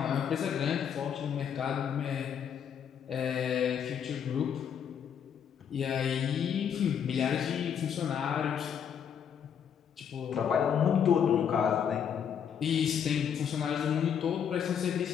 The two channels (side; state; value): right; quieter; 8.1 dB